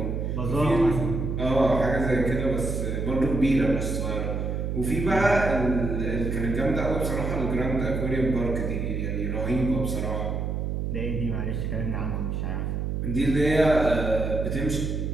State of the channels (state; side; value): noise; right; hum, 2 dB below the sound